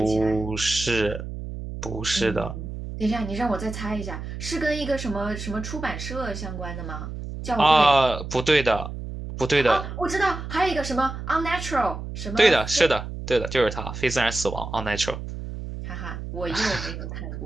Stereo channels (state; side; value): noise; right; hum, 8 dB below the sound